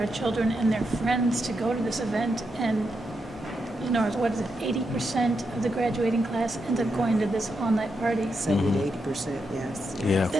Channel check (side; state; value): both; normal; correlation 0.84